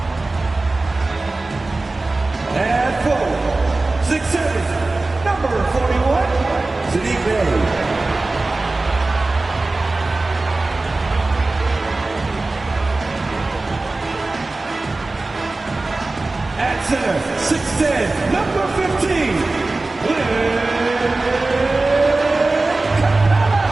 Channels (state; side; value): quieter; left; 3.2 dB